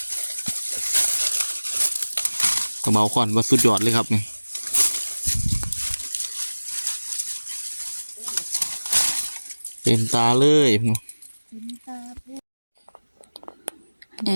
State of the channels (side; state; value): both; inverted; correlation -1.00